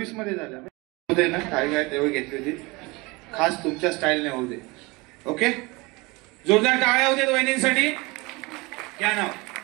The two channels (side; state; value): left; quieter; 24.7 dB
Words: मध्ये झालं होते ना. काय तेव्हा घेतली होती खास तुमच्या स्टाईलने होऊ दे. ओके जोरदार टाळ्या होते वहिनींसाठी. क्या नाव?